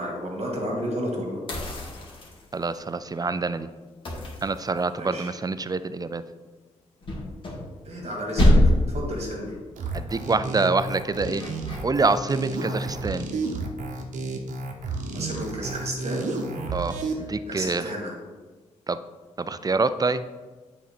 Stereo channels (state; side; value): normal; both; correlation 0.67